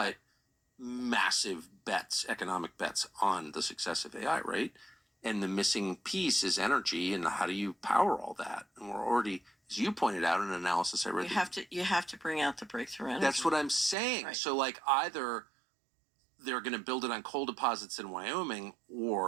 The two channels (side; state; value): left; drops out; at 14.0 s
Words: massive bets, economic bets on the success of AI, right? And the missing piece is energy, and how do you power all that? And we're already, as you pointed out in an analysis I read, you have to bring out the breakthrough energy. That's what I'm saying. Right. So either they're going to build it on coal deposits in Wyoming,